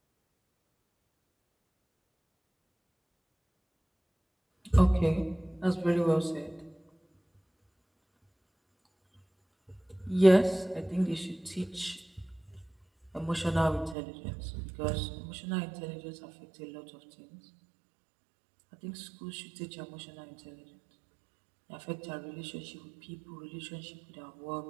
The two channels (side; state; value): left; drops out; at 14.0 s